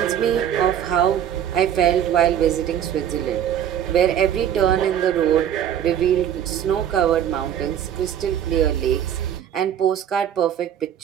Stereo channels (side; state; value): left; quieter; 9.9 dB